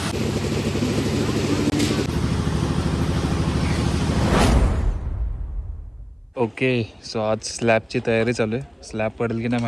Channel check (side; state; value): both; identical; correlation 1.00